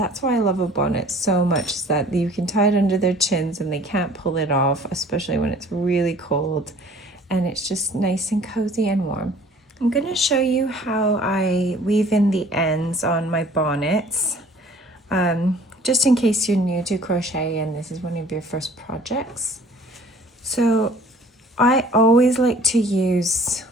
why I love a bonnet so much, is that you can tie it under their chins and they can't pull it off, especially when it's really cold, and it's just nice and cozy and warm. I'm going to show you how I weave in the ends on my bonnets, just in case you're new to crochet and this is one of your first projects. So I always like to use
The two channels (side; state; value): both; normal; correlation 0.51